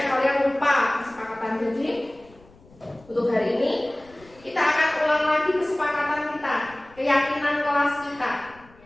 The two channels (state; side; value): noise; left; rumble, 26 dB below the sound